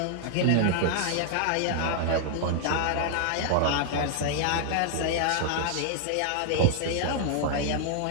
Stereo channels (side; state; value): both; different; correlation -0.01